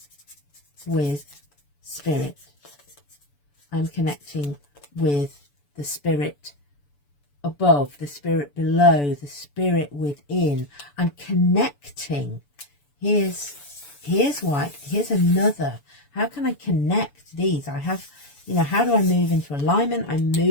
with spirit. I'm connecting with the spirit above, the spirit below, the spirit within. I'm connecting. Here's another. How can I connect these? I have, you know, how do I move into alignment? I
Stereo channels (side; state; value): right; late; 6.9 ms